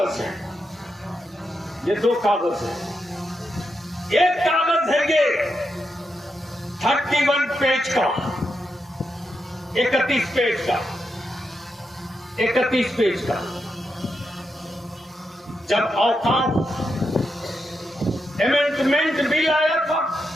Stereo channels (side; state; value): both; normal; correlation 0.85